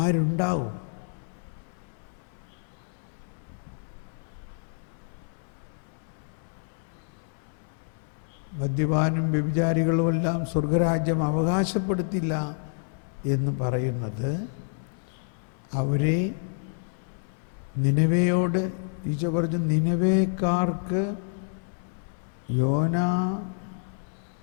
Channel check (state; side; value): silent; right; 59 dB below the other